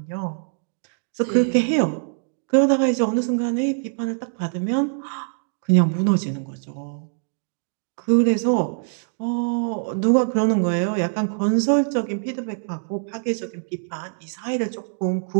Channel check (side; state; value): left; silent; digital silence